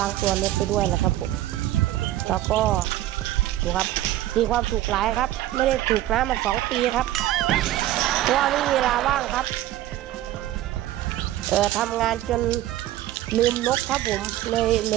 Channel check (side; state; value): left; quieter; 14.3 dB